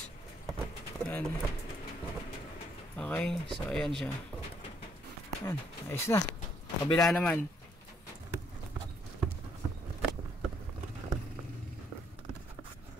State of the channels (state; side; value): normal; both; correlation 0.70